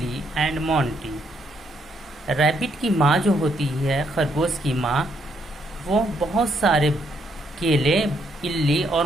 and Monty. Rabbit की माँ जो होती है, खरगोश की माँ, वो बहुत सारे केले इल्ली और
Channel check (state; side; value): normal; both; correlation 0.73